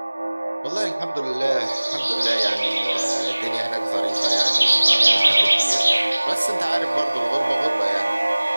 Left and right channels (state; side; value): inverted; both; correlation -1.00